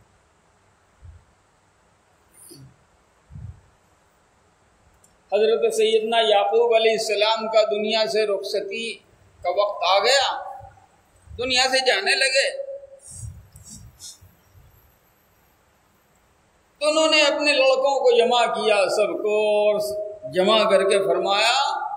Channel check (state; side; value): identical; both; correlation 1.00